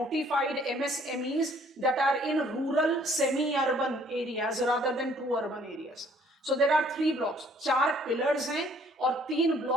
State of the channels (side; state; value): both; normal; correlation 0.60